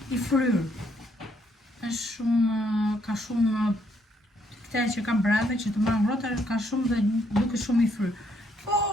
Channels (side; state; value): both; normal; correlation 0.71